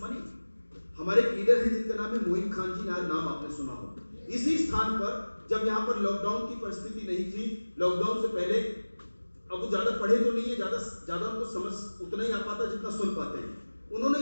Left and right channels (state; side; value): inverted; both; correlation -1.00